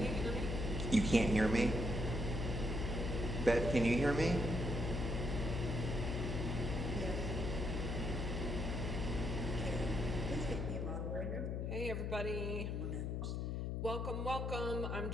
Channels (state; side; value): noise; left; hum, 1 dB below the sound